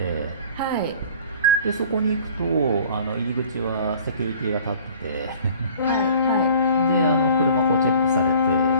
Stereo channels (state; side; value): inverted; both; correlation -0.48